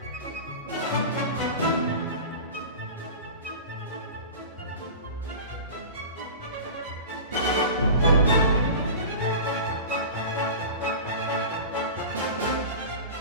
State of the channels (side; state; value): both; inverted; correlation -0.33